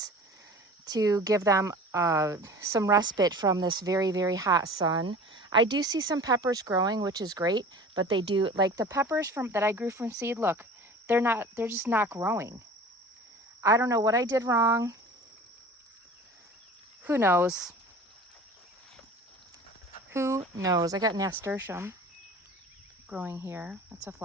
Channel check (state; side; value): normal; both; correlation 0.41